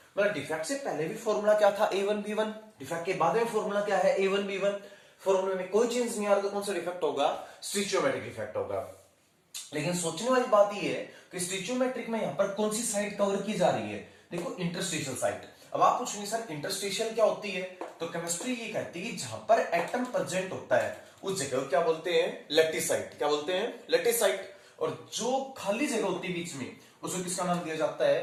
मतलब डिफेक्ट से पहले भी फॉर्मूला क्या था? A1 B1। डिफेक्ट के बाद में फॉर्मूला क्या है? A1 B1। फॉर्मूले में कोई चेंज नहीं आ रहा तो कौन सा डिफेक्ट होगा? स्टिचियोमेट्रिक डिफेक्ट होगा। लेकिन सोचने वाली बात यह है कि स्टिचियोमेट्रिक में यहां पर कौन सी साइड कवर की जा रही है? देखो इंटरस्टिशियल साइड। अब आप पूछेंगे सर इंटरस्टिशियल क्या होती है? तो केमिस्ट्री ये कहती है जहां पर एटम प्रेजेंट होता है उस जगह क्या बोलते हैं? Lattice site. क्या बोलते हैं? Lattice site. और जो खाली जगह होती है बीच में उसको किसका नाम दिया जाता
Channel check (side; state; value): both; identical; correlation 1.00